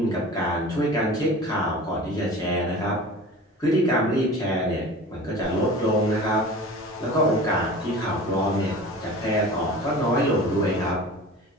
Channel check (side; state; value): both; normal; correlation 0.38